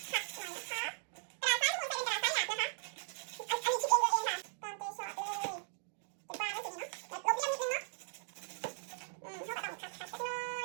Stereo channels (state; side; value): silent; left; digital silence